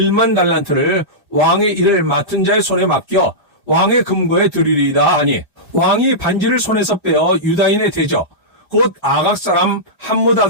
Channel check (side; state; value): both; normal; correlation -0.14